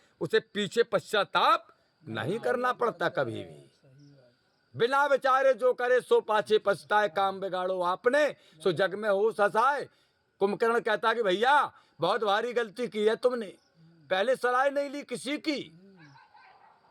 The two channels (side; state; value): both; identical; correlation 1.00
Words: उसे पीछे पश्चाताप नहीं करना पड़ता कभी भी। बिना विचारे जो करे सो पाछे पछताए, काम बिगाड़ो आपने सो जग में हो ससाए। कुंभकर्ण कहता कि भैया बहुत भारी गलती की है तुमने, पहले सलाह नहीं ली किसी की।